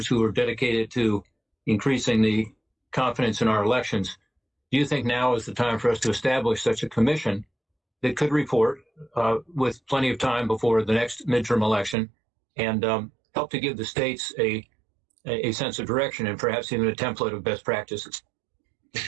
who are dedicated to increasing the confidence in our elections, do you think now is the time for us to establish such a commission that could report with plenty of time before the next midterm election and help to give the states a sense of direction and perhaps even a template of best practices?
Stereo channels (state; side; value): drops out; left; at 12.0 s